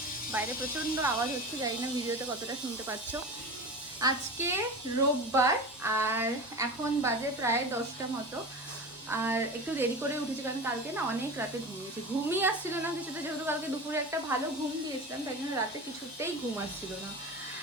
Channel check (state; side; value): normal; both; correlation 0.29